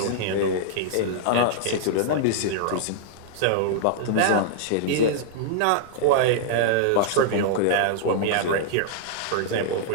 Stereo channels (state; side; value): different; both; correlation -0.02